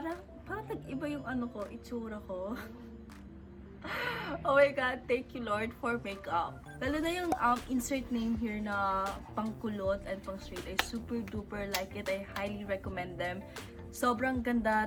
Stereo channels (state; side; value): identical; both; correlation 1.00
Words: nag-iba yung itsura ko. Oh my god, thank you Lord for makeup. Lalo na yung insert name here na pangkulot and pang straight. I super duper like it. I highly recommend them. Sobrang ganda